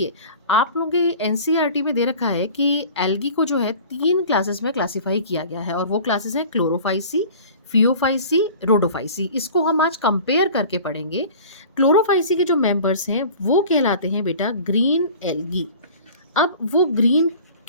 आप लोगों के एनसीईआरटी में दे रखा है कि एल्गी को जो है 3 क्लासेस में क्लासीफाई किया गया है और वो क्लासेस हैं क्लोरोफाइसी, फियोफाइसी, रोडोफाइसी। इसको हम आज कंपेयर करके पढ़ेंगे। क्लोरोफाइसी के जो मेंबर्स हैं वो कहलाते हैं बेटा ग्रीन एल्गी। अब वो ग्रीन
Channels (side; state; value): both; inverted; correlation -0.42